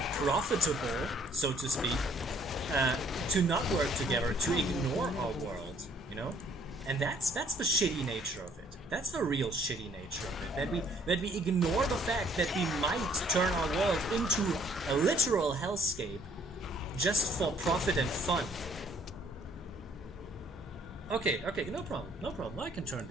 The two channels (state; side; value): normal; both; correlation 0.62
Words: profitable, so to speak, to not work together, to ignore our world, you know? And that's the shitty nature of it. That's the real shitty nature of it. That we ignore the fact that we might turn our world into a literal hellscape just for profit and fun. Okay, no problem. I can turn